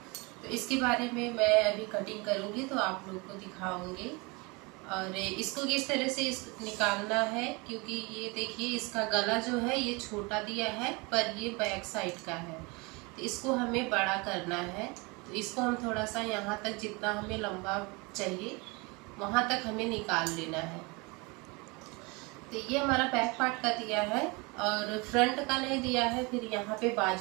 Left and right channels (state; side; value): quieter; left; 27.5 dB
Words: तो इसके बारे में मैं अभी कटिंग करूंगी तो आप लोग को दिखाऊंगी और इसको किस तरह से निकालना है, क्योंकि ये देखिए इसका गला जो है ये छोटा दिया है पर ये बैक साइड का है, तो इसको हमें बड़ा करना है। तो इसको हम थोड़ा सा यहाँ तक जितना हमें लंबा चाहिए वहाँ तक हमें निकाल लेना है। तो ये हमारा बैक पार्ट का दिया है और फ्रंट का नहीं दिया है, फिर यहाँ पे